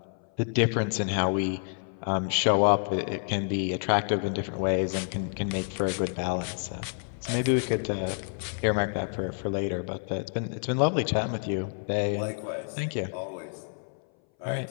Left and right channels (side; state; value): right; silent; 59 dB below the other